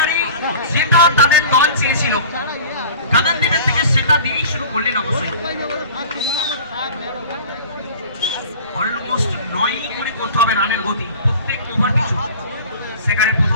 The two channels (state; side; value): inverted; both; correlation -0.41